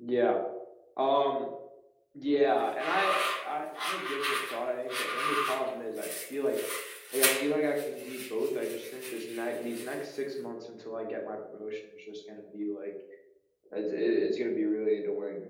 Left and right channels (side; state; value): both; identical; correlation 1.00